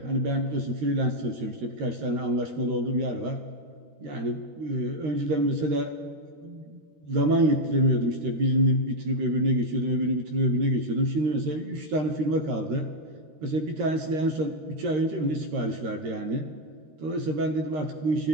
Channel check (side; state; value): left; late; 13 ms